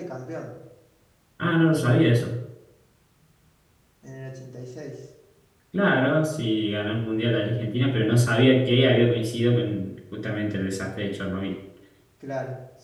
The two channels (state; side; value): identical; both; correlation 1.00